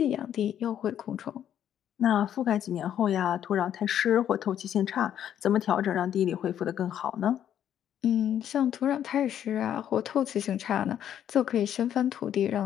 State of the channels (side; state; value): right; quieter; 10.1 dB